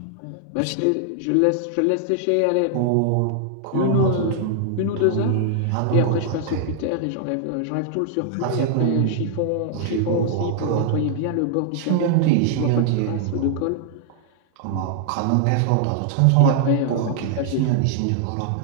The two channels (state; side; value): different; both; correlation -0.01